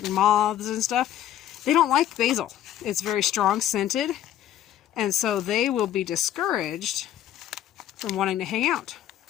moths and stuff, they don't like basil. It's very strong scented, and so they will be discouraged from wanting to hang out.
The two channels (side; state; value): right; quieter; 11.5 dB